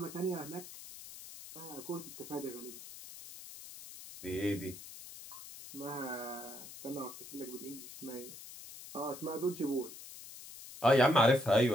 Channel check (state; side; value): noise; left; hiss, 14 dB below the sound